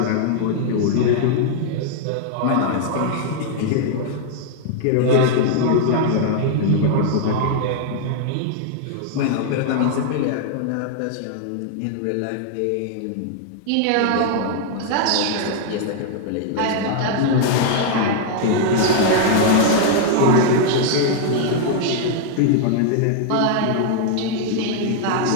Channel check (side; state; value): both; different; correlation 0.00